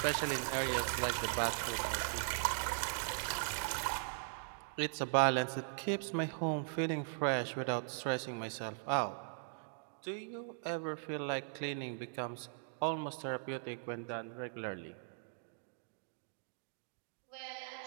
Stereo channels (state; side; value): silent; left; digital silence